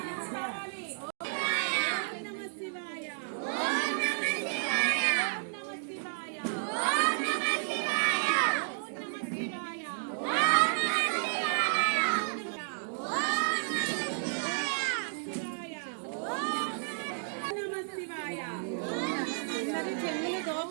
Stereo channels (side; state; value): left; silent; digital silence